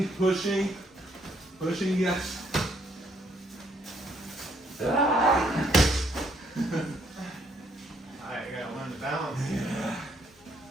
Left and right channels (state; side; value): normal; both; correlation 0.69